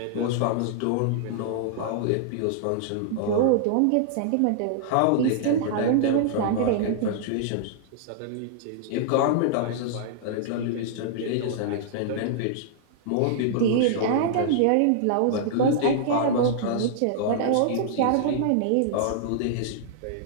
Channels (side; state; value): both; different; correlation -0.01